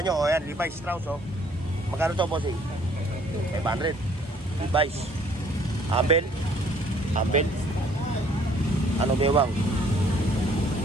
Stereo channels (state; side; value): normal; both; correlation 0.60